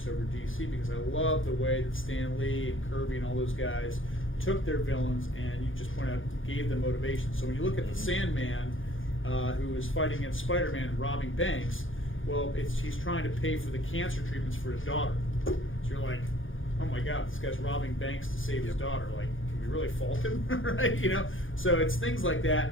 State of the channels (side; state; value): right; late; 0.58 ms